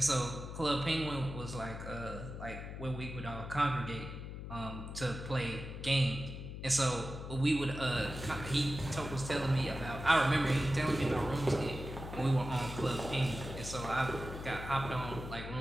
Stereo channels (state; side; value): noise; left; hum, 8 dB below the sound